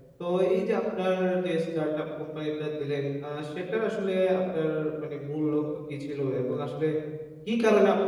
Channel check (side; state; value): both; identical; correlation 1.00